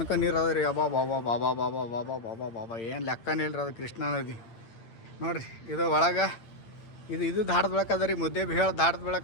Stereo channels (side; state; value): right; late; 8.8 ms